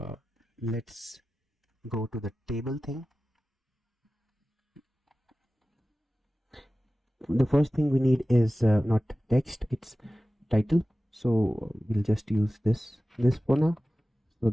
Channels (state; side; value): normal; both; correlation 0.95